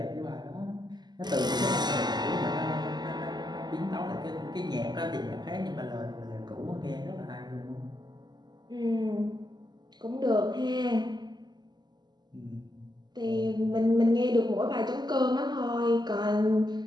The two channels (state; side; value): late; left; 0.21 ms